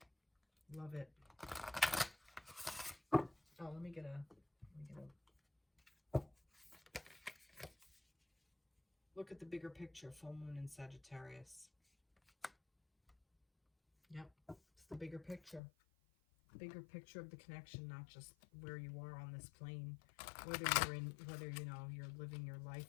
Love it. Oh, let me get a look at the bigger picture. Full moon in Sagittarius. Yep, it's the bigger picture. Bigger picture of the connection, not just where you are on this plane, whether you know, you're living your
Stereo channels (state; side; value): drops out; right; at 15.6 s